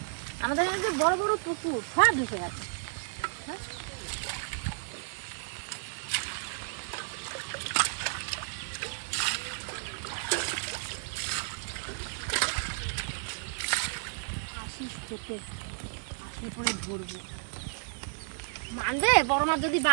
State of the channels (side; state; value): left; silent; 56 dB below the other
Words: আমাদের এই যে বড় বড় পুকুর সব ভেসে গেছে। আসলে পরে ধরবো। মানবে বড় মাছ যদি